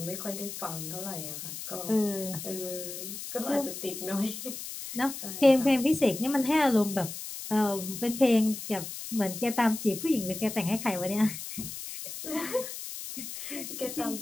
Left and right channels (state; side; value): noise; left; hiss, 8 dB below the sound